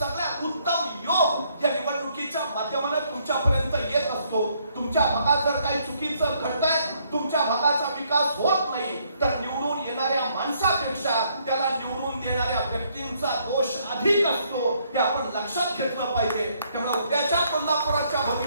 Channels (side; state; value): both; inverted; correlation -0.69